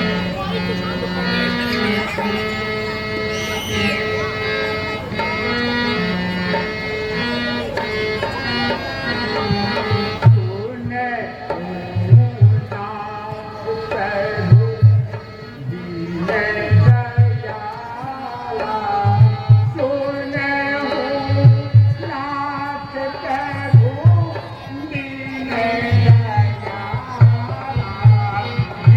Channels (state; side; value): identical; both; correlation 1.00